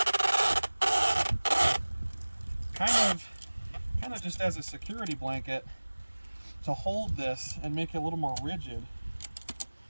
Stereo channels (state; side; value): inverted; both; correlation -1.00